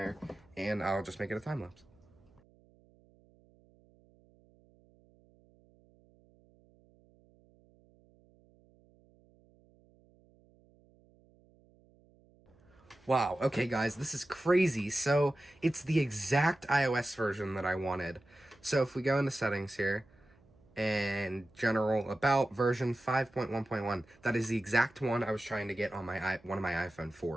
and I'll just make it a time lapse. Wow, okay guys, this is crazy. So, it's the exact iOS version that I wanted. So if we go into settings here, and general about version 5.1.1, that is the exact one I was trying to get on my one of my iPhone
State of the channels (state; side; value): noise; right; hum, 30 dB below the sound